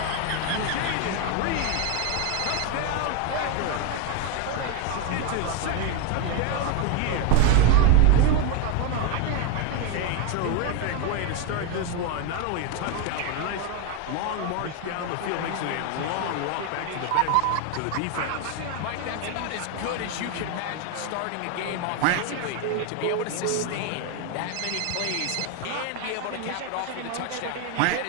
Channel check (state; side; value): different; both; correlation 0.01